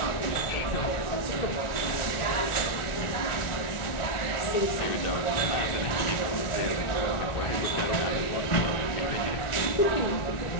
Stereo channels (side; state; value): right; late; 1.4 ms